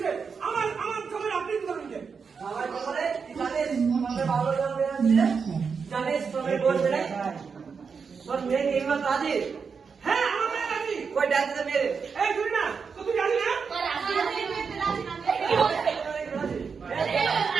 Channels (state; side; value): quieter; left; 5.7 dB